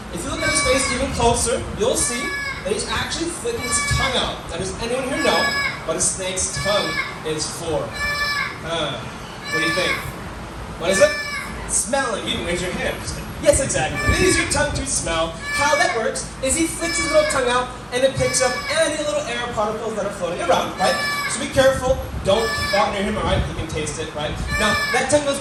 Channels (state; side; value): identical; both; correlation 1.00